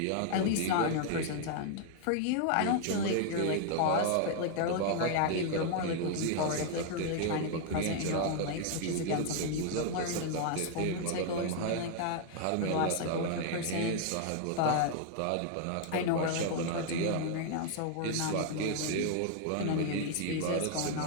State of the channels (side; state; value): both; different; correlation 0.00